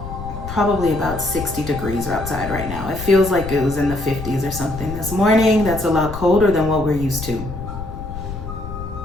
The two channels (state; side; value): noise; left; rumble, 9 dB below the sound